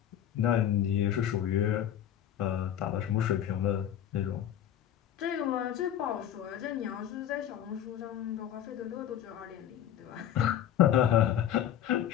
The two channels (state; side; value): quieter; right; 10.5 dB